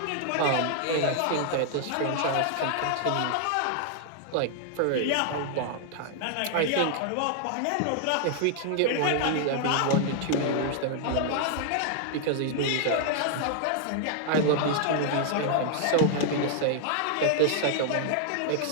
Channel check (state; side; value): different; both; correlation -0.01